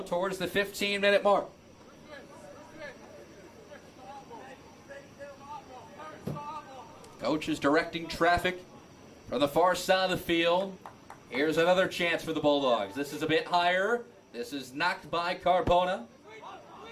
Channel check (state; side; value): identical; both; correlation 1.00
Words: towards the 15-minute mark. Coach is directing traffic from the far side of the field. Here's another chance for the Bulldogs. This is a bit higher. This is knocked by Carbona.